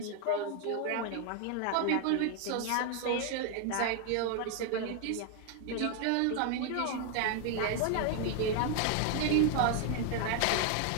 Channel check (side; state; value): both; different; correlation 0.00